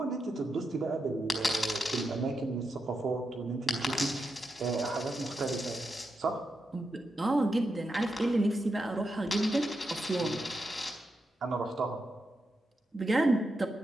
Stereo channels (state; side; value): normal; both; correlation 0.86